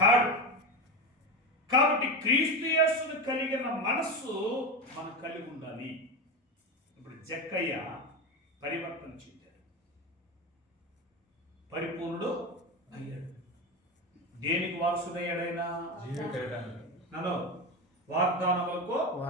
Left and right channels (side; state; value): both; normal; correlation 0.19